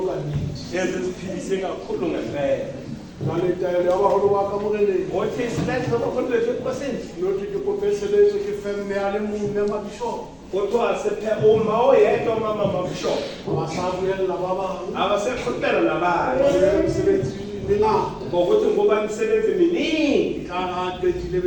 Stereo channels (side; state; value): both; identical; correlation 1.00